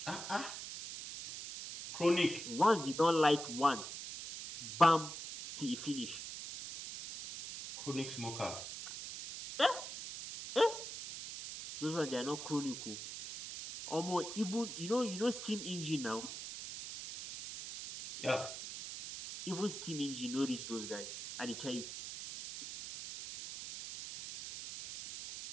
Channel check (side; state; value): right; noise; hiss, 8 dB below the sound